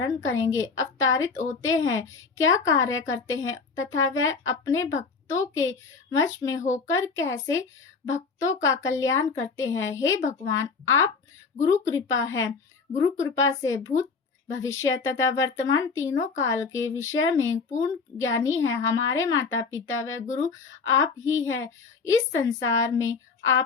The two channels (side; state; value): right; quieter; 4.9 dB